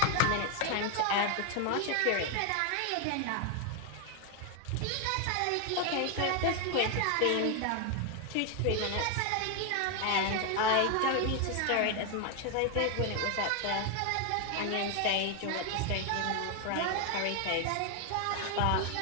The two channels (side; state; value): both; different; correlation 0.01